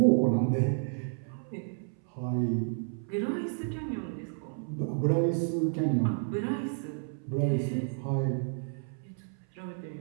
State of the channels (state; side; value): silent; left; 57 dB below the other